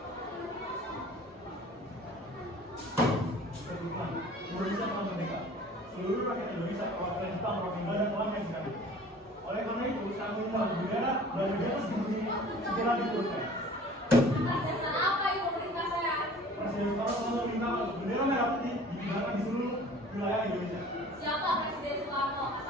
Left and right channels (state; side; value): normal; both; correlation 0.47